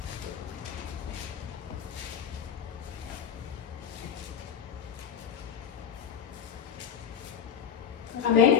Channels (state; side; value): quieter; right; 8.0 dB